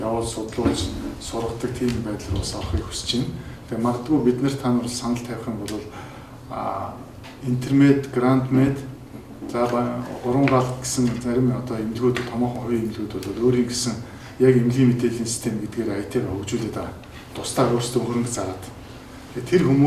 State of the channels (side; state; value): both; identical; correlation 1.00